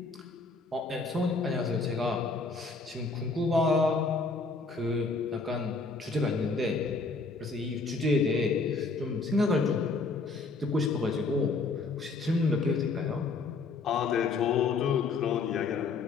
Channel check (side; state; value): right; quieter; 4.0 dB